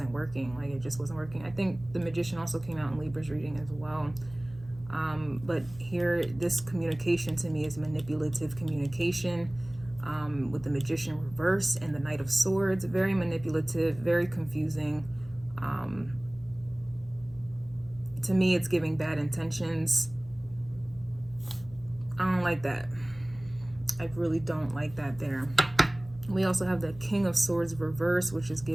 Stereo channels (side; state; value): left; noise; hum, 19 dB below the sound